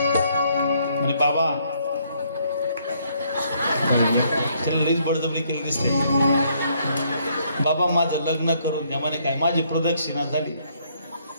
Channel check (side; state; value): both; inverted; correlation -0.69